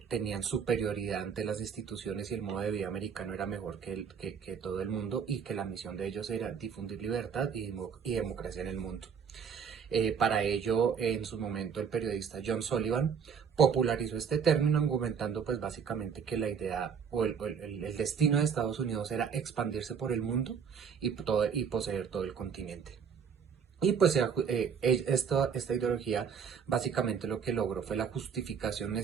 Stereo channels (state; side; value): quieter; left; 6.9 dB